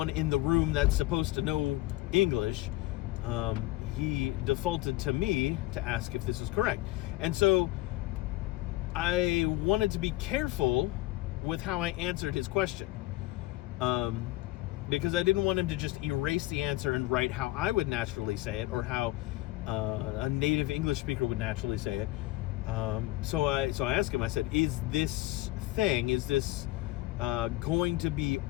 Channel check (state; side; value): quieter; right; 18.1 dB